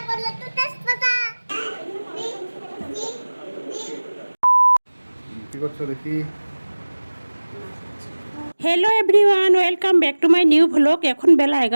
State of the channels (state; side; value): inverted; both; correlation -1.00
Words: কি করছো দেখি? Hello everyone, welcome back to my new vlog. এখন বেলা